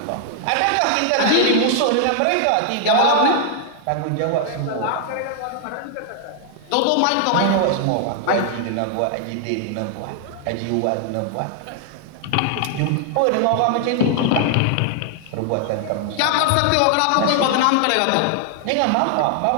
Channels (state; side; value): different; both; correlation 0.00